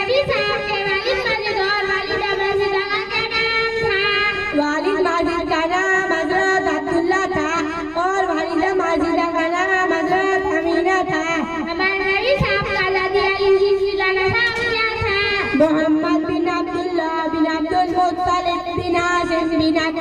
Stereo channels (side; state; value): both; identical; correlation 1.00